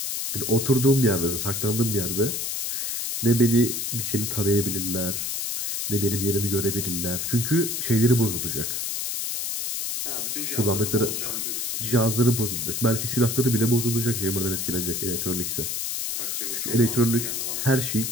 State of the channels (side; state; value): left; noise; hiss, 2 dB below the sound